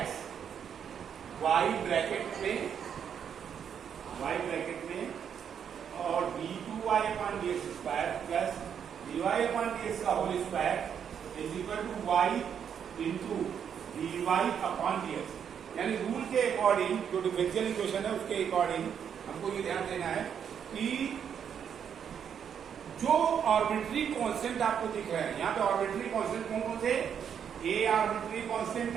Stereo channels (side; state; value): left; quieter; 8.0 dB